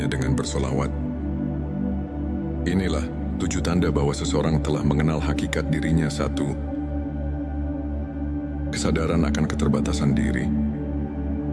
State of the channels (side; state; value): both; identical; correlation 1.00